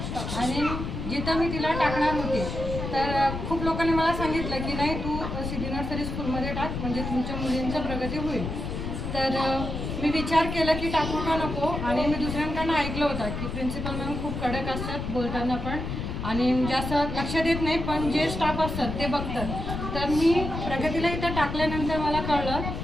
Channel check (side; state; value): left; noise; rumble, 5 dB below the sound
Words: आणि जिथं मी तिला टाकणार होते तर खूप लोकांनी मला सांगितलं की नाही, तू सिद्धी नर्सरी स्कूलमध्ये टाक, म्हणजे तुमच्या मुलींचं प्रगती होईल. तर मी विचार केला की टाकू का नको, आणि मी दुसऱ्यांकडनं ऐकलं होतं की प्रिन्सिपल मॅम खूप कडक असतात बोलताना पण, आणि जास्त लक्ष देत नाही, पण जे स्टाफ असतात ते बघतात. तर मी प्रगतीला इथं टाकल्यानंतर मला कळलं